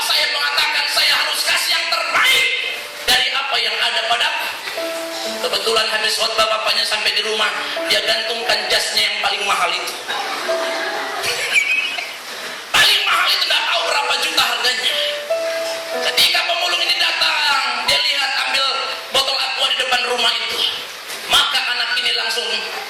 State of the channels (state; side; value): identical; both; correlation 1.00